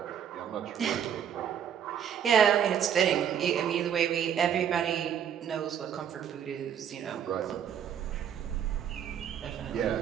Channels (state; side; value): quieter; left; 8.8 dB